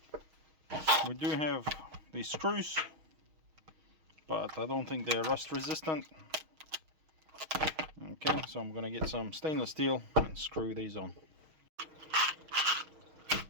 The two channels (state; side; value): late; left; 6.3 ms